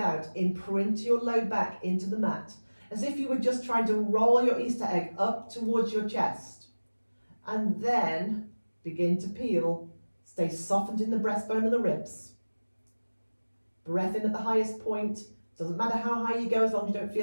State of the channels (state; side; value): inverted; both; correlation -1.00